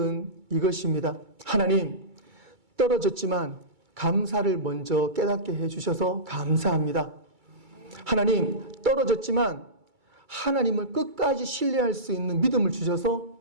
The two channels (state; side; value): late; left; 2.3 ms